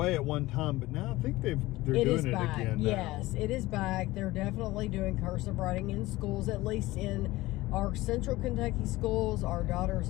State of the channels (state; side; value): quieter; right; 18.5 dB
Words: at one time, but now I think they're doing it back. again now. Yes, it is back. They're definitely doing cursive writing in schools, at least in our Central Kentucky schools. Our daughter's